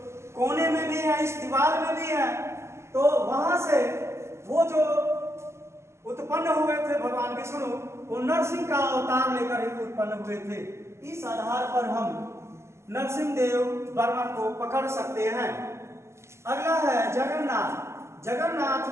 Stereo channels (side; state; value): left; late; 0.13 ms